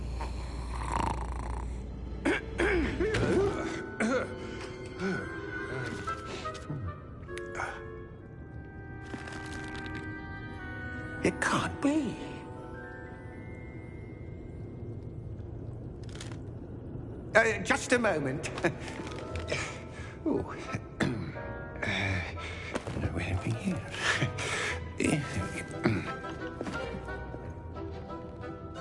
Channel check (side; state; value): both; identical; correlation 1.00